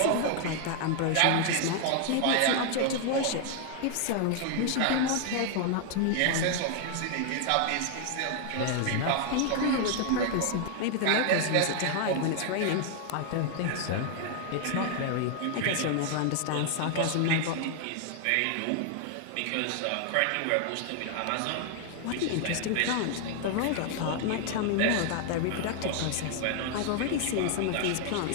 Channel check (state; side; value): different; both; correlation 0.00